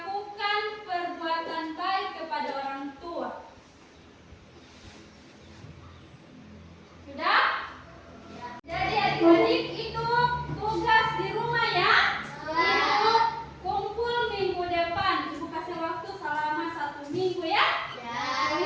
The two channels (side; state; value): both; identical; correlation 1.00